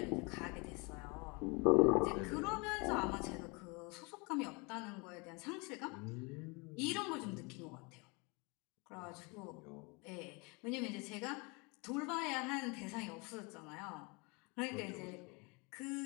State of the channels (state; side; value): quieter; right; 29.4 dB